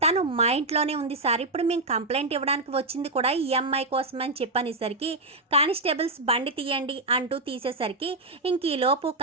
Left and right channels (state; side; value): quieter; left; 3.1 dB